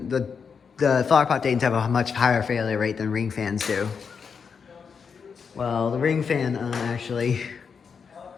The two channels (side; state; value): right; quieter; 6.1 dB